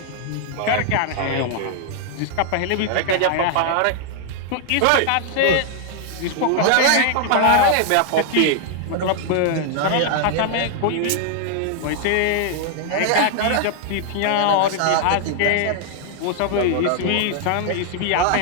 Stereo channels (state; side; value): different; both; correlation 0.00